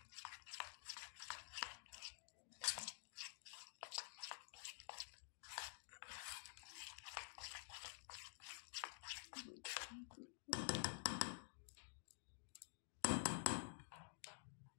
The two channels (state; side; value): silent; right; digital silence